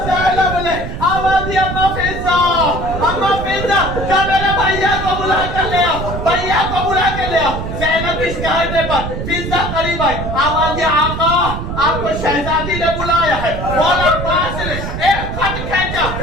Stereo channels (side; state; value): right; noise; rumble, 5 dB below the sound